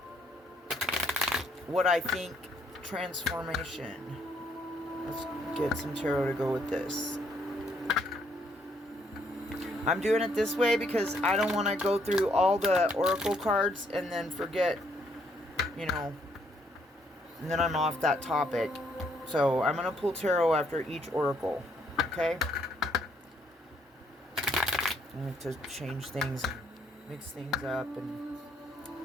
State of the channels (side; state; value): both; normal; correlation 0.70